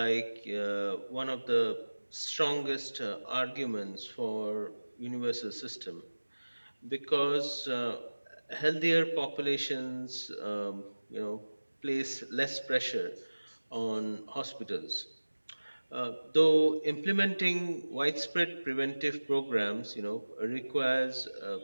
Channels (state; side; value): inverted; both; correlation -1.00